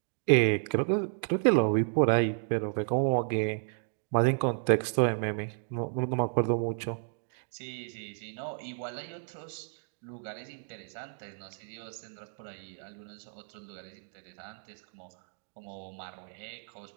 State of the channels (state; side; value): silent; left; digital silence